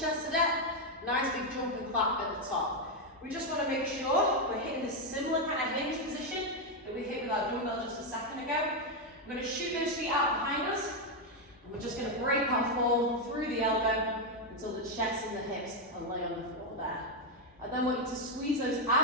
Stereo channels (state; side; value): normal; both; correlation 0.03